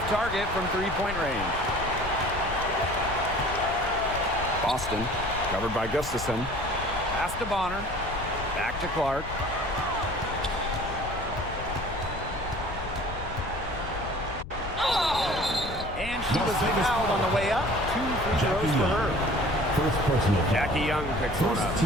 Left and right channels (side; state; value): left; noise; rumble, 9 dB below the sound